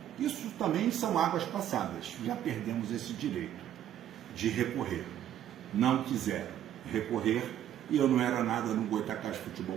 isso também são águas passadas. Já perdemos esse direito de recorrer. Não quiseram recorrer e eu não era nada no Goitacás Futebol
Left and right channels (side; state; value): left; quieter; 11.1 dB